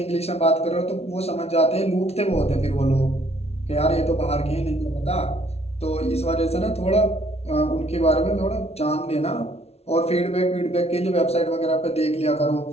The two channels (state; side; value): late; right; 0.30 ms